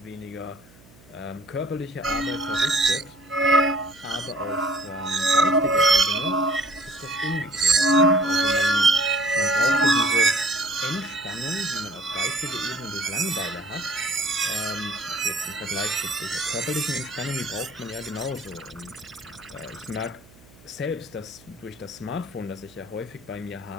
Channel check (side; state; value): right; noise; hum, 26 dB below the sound